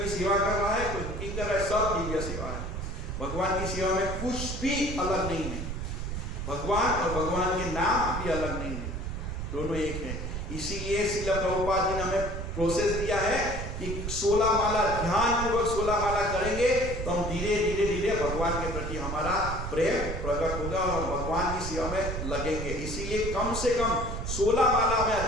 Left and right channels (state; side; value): noise; right; rumble, 5 dB below the sound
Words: की सेवा कर रहा है, कोई कुकिंग कर रहा है, सब दिव्य सेवा है। भगवान की सेवा में कुछ भी अलग नहीं है, भगवान और भगवान के नाम भी अलग नहीं है, दोनों एक है। इसीलिए श्रील प्रभुपाद जी ने हमें प्रोसेस दिया है कि 16 माला ध्यान पूर्वक 16 माला करेंगे तो हम धीरे धीरे धीरे भगवान के प्रति हमारा प्रेम प्रकट होगा और हम भगवान की सेवा में लगेंगे। इसीलिए कम से कम 16 माला हमें